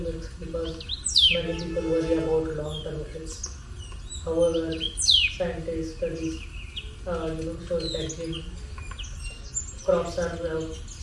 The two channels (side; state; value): both; identical; correlation 1.00